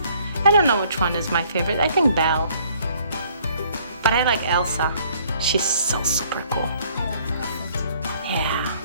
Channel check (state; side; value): inverted; both; correlation -0.61